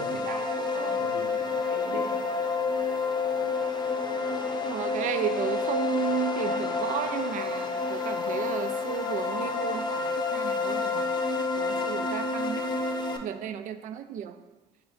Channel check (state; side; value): normal; both; correlation 0.41